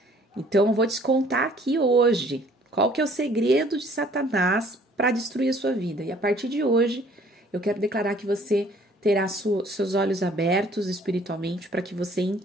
Então eu vou te contar aqui hoje qual que é o segredo de Satanás para destruir a sua vida. E a partir de hoje, eu quero declarar que você terá seus olhos abertos espiritualmente para que você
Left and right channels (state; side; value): normal; both; correlation 0.57